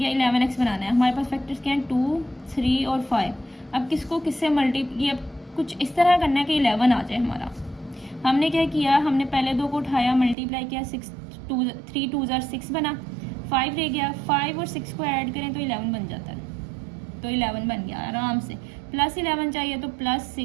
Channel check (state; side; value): drops out; left; at 10.4 s